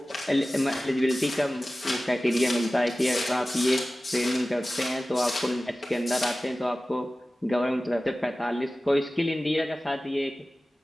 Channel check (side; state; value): both; normal; correlation 0.96